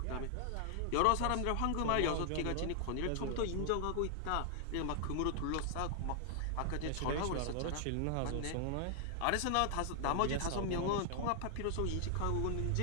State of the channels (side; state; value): both; different; correlation 0.00